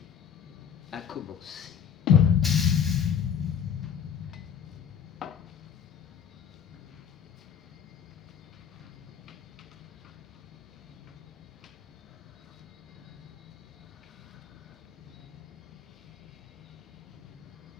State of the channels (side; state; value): right; quieter; 8.1 dB